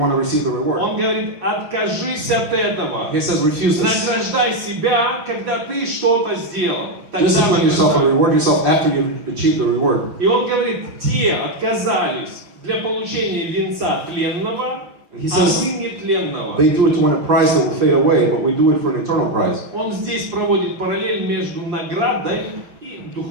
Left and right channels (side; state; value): left; late; 5.7 ms